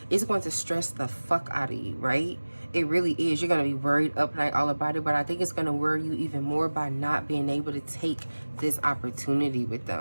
It's going to stress the fuck out of you, right? It really is. You're going to be worried up night all about it, but I think it's going to worry you even more by not being able to take this opportunity with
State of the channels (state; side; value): inverted; both; correlation -1.00